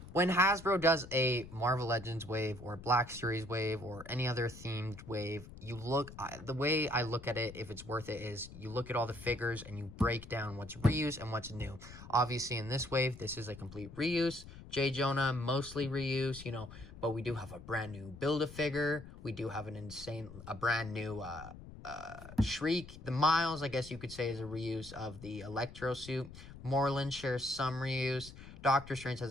When Hasbro does a Marvel Legends wave or Black Series wave or any other themed wave, the way I look at it, if it's worth it, is you look at all the figures and you break down what's reuse and what's new. Obviously, in this wave, this is a complete reuse. J. Jonah, mostly reuse, you know, but we do have a brand new Build-A-Figure. We do have a brand new Shriek. The Miles, I guess you could say, is a reuse of the Electro suit. Moreland shares some reuse. Doctor Strange has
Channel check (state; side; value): noise; left; rumble, 15 dB below the sound